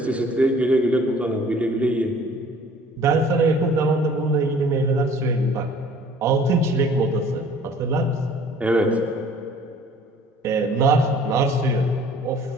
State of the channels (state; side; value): normal; both; correlation 0.52